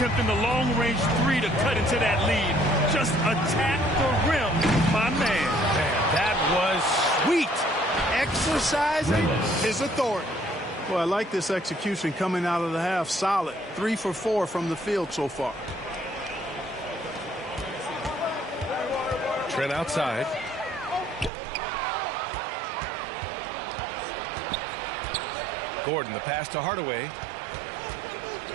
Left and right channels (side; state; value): left; drops out; at 21.3 s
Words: the long-range 3 to cut into that lead. Just attack the rim, my man. That was sweet! Exercising his authority. Well, I like this execution coming out of the half. Solid. 3 for 4 from the field so far. Trent outside. Gordon, the pass to Hardaway.